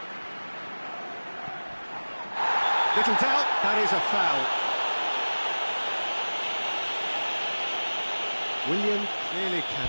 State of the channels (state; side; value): inverted; both; correlation -1.00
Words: Little doubt, that is a foul. Willian clearly